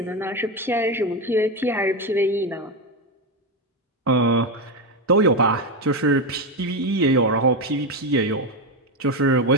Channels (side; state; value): both; normal; correlation 0.11